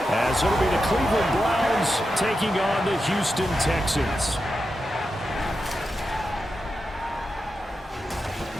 as it'll be the Cleveland Browns taking on the Houston Texans.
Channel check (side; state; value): both; normal; correlation 0.89